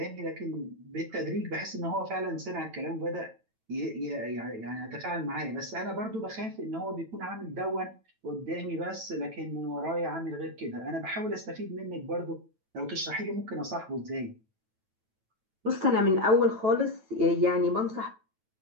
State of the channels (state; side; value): late; left; 9.1 ms